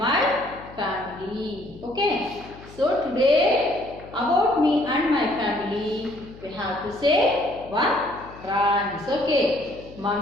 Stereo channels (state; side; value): noise; left; hum, 19 dB below the sound